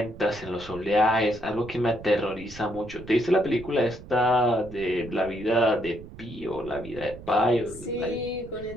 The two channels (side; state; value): right; noise; rumble, 16 dB below the sound